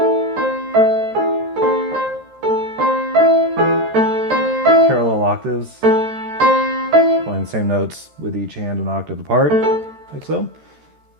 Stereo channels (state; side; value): late; left; 13 ms